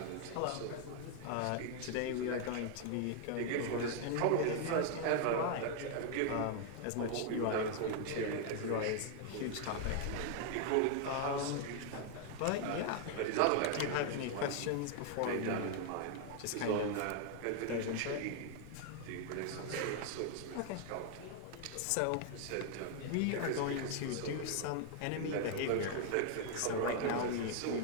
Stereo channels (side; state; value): both; different; correlation 0.00